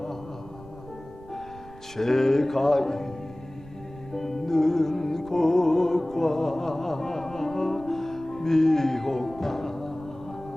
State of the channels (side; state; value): right; noise; rumble, 19 dB below the sound